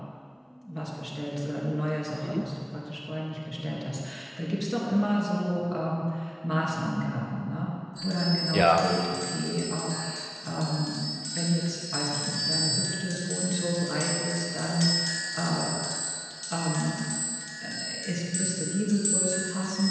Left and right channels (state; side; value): identical; both; correlation 1.00